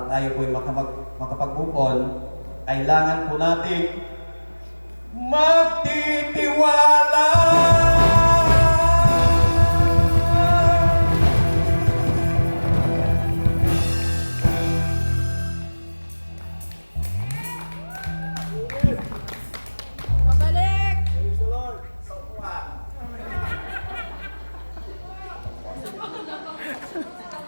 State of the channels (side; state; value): both; inverted; correlation -1.00